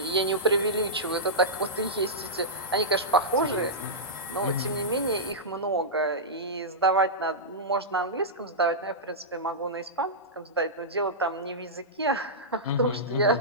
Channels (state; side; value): normal; both; correlation -0.13